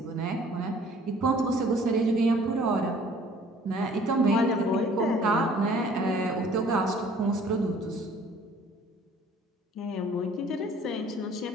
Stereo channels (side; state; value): both; normal; correlation 0.54